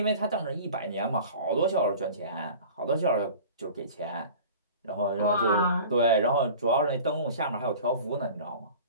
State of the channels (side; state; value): both; inverted; correlation -0.41